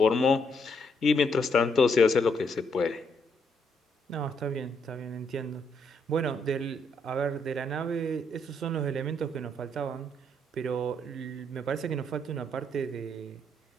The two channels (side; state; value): both; normal; correlation 0.74